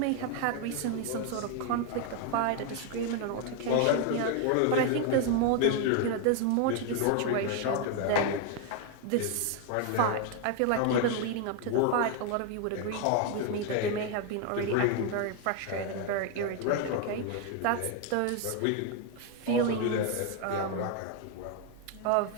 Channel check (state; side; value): different; both; correlation 0.01